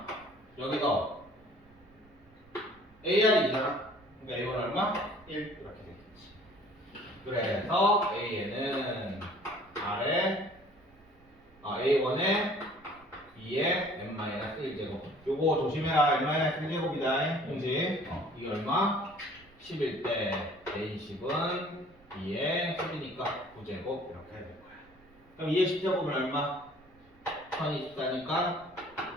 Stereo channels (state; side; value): noise; right; rumble, 28 dB below the sound